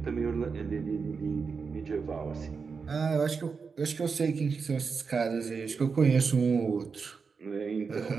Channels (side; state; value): left; quieter; 5.3 dB